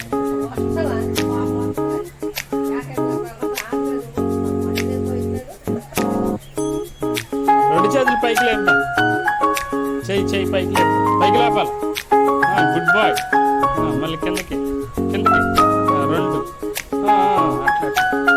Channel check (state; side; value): identical; both; correlation 1.00